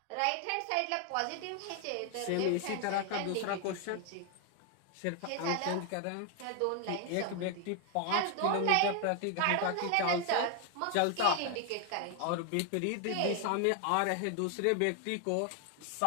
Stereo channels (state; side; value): different; both; correlation 0.00